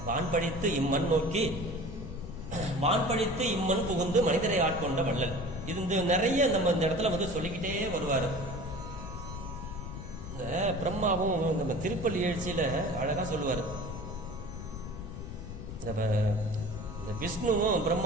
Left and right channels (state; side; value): noise; left; rumble, 9 dB below the sound